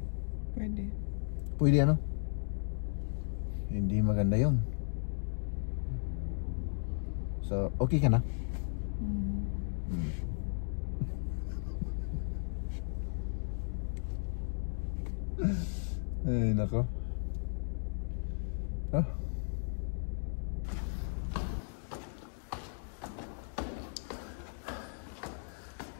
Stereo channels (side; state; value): right; silent; digital silence